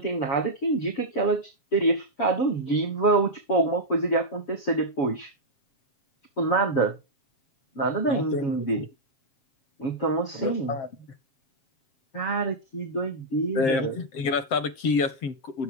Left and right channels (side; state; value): right; late; 7.6 ms